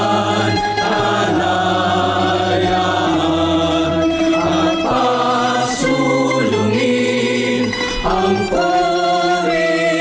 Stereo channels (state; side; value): identical; both; correlation 1.00